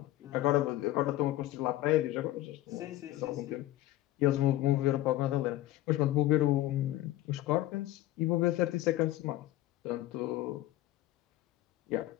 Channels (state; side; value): quieter; right; 15.2 dB